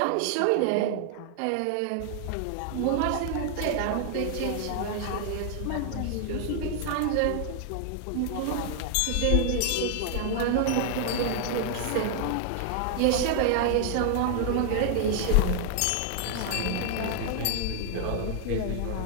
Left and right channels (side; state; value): both; different; correlation 0.00